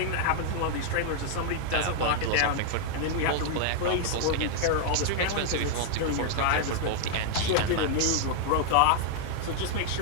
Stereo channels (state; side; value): different; both; correlation 0.00